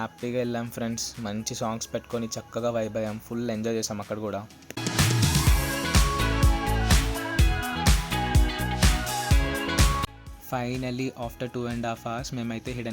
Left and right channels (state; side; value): identical; both; correlation 1.00